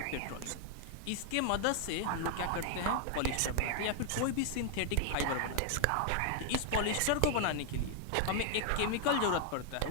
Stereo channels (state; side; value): different; both; correlation 0.00